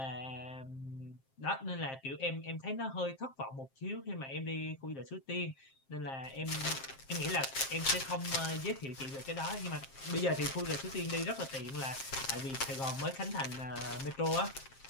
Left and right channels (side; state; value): right; late; 7.5 ms